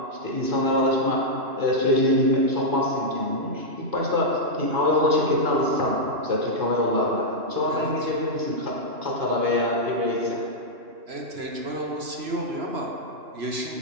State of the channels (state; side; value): late; left; 3.0 ms